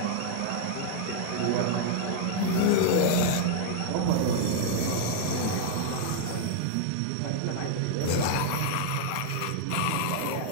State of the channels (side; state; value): both; different; correlation -0.01